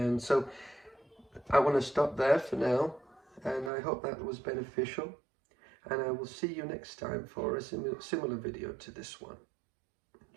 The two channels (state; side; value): drops out; left; at 3.7 s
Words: so I want to stop there for now, and I hope that was beneficial, and I will see you next time for a similar video to this one.